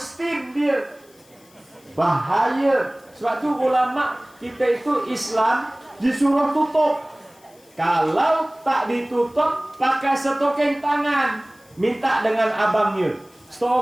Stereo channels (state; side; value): noise; left; hiss, 29 dB below the sound